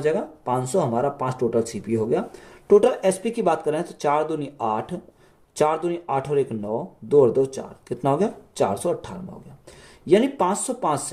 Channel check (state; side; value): identical; both; correlation 1.00